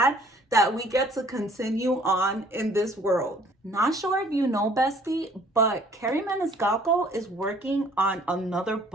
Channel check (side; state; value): both; normal; correlation 0.57